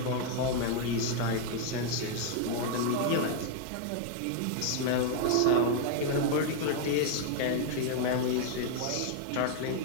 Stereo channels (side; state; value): both; different; correlation 0.00